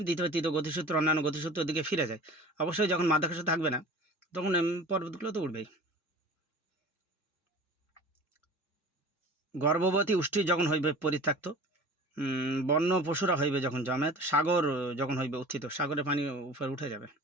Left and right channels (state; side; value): normal; both; correlation 0.40